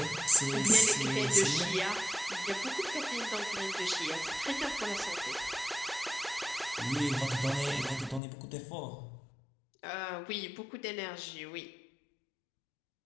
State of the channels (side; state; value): right; drops out; at 8.2 s